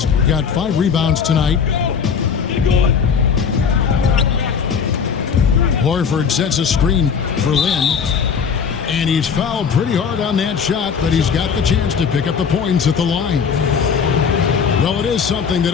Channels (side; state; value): right; quieter; 6.5 dB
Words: got 5 rebounds tonight. Horford sets a screen for Lin. And he's fouled pretty hard on that shot, but he's got the chance to pick up the points at the line. Well, it is something that